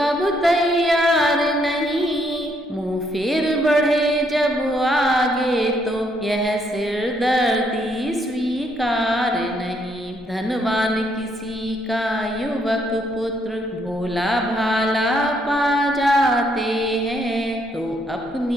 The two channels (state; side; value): normal; both; correlation 0.72